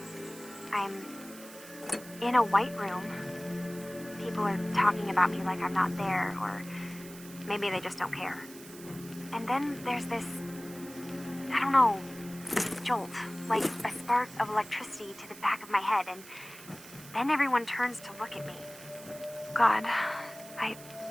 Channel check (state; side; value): noise; right; hiss, 17 dB below the sound